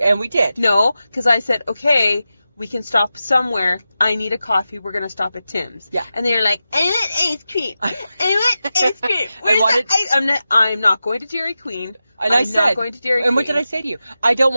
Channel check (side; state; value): both; inverted; correlation -0.92